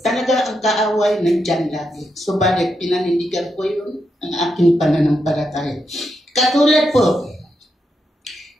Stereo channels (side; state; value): both; normal; correlation 0.83